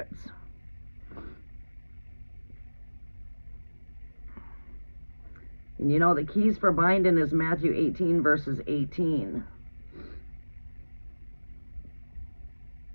And you know, the keys for binding is Matthew 18 verses 18.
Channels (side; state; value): both; inverted; correlation -1.00